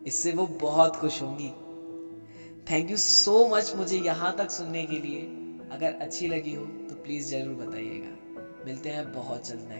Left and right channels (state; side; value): inverted; both; correlation -1.00